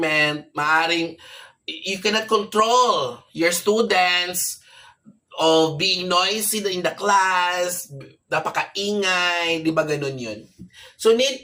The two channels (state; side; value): identical; both; correlation 1.00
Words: maaaring you cannot control your students of being noisy in the class, napakaingay, di ba ganun yun? So need